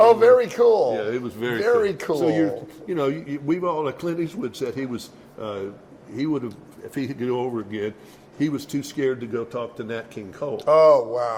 Oh, very cool. Yeah, it was very cool. So we've all, like Clint Eastwood said, he would have, if he could go over again, he was too scared to go talk to Nat King Cole. Oh,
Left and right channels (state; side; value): identical; both; correlation 1.00